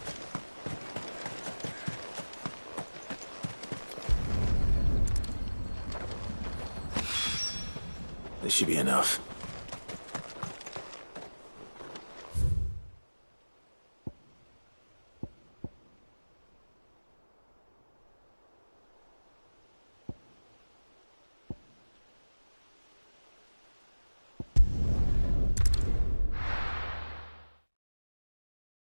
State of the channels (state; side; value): inverted; both; correlation -1.00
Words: This should be enough.